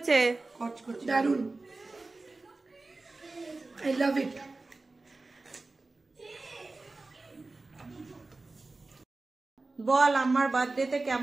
দারুন, আই লাভ ইট। বল আমার বার্থডেতে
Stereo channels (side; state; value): left; quieter; 3.3 dB